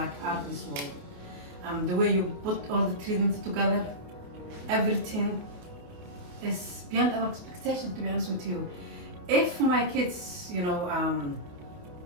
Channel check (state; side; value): late; left; 28 ms